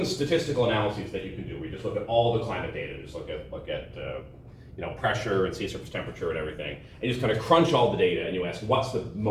statistical analyses that you can do. We just look at all the climate data, just look at pressure and sea surface temperature and everything, and you just kind of crunch all the data, and you ask what's the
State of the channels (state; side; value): identical; both; correlation 1.00